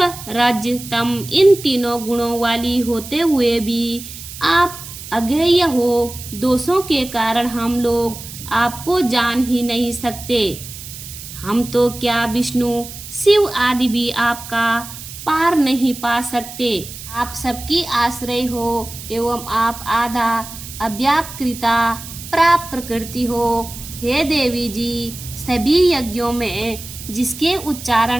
रज तम इन तीनों गुणों वाली होते हुए भी आप अज्ञेय हो। दोषों के कारण हम लोग आपको जान ही नहीं सकते। हम तो क्या विष्णु शिव आदि भी आपका पार नहीं पा सकते। आप सबकी आश्रय हो एवं आप आधा अव्याकृता प्राप्त प्रकृति हो। हे देवी जी, सभी यज्ञों में जिसके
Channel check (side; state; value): right; noise; hiss, 13 dB below the sound